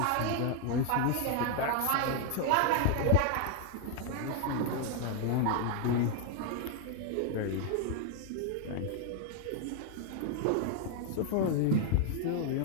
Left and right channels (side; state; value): both; different; correlation 0.01